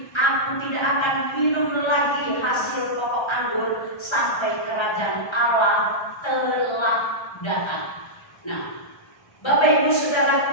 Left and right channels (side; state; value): right; late; 1.3 ms